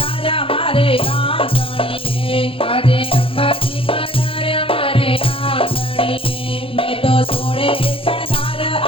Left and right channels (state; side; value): late; right; 0.27 ms